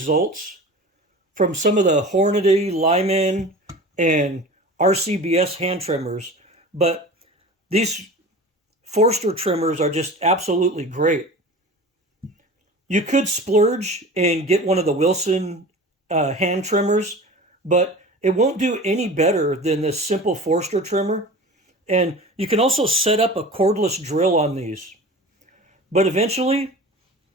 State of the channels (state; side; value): normal; both; correlation 0.37